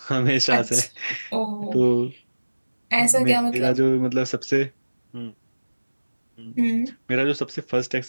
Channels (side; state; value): both; inverted; correlation -1.00